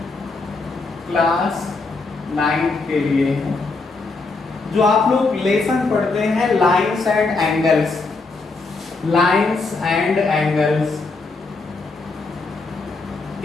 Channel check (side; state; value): right; quieter; 3.8 dB